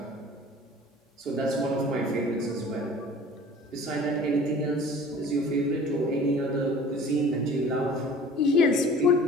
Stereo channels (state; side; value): normal; both; correlation 0.45